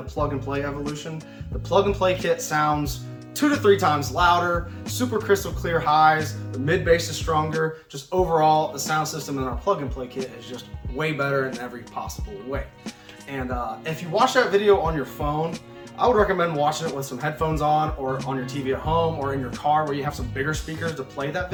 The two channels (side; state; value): both; identical; correlation 1.00